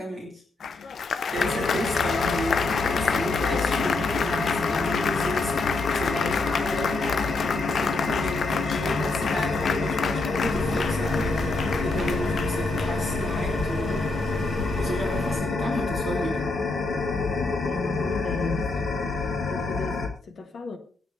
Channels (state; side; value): quieter; right; 3.3 dB